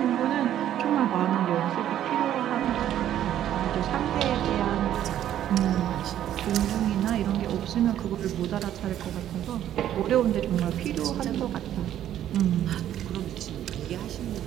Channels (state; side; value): quieter; left; 11.4 dB